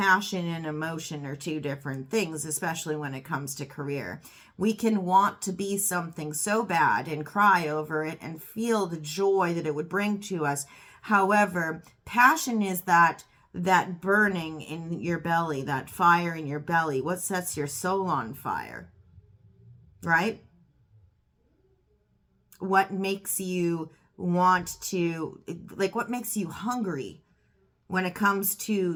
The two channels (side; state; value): both; identical; correlation 1.00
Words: and emotion are two different things, especially when it comes to career. We can want to be something so bad and cry over it and feel the joy that it would bring to us. However, passion is that burning in your belly, that fire in your belly, what sets your soul on fire, right? What makes you want to, like, what makes you hungry when it comes